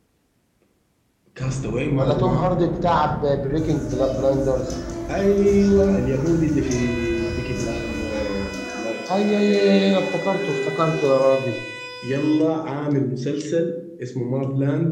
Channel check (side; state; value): both; identical; correlation 1.00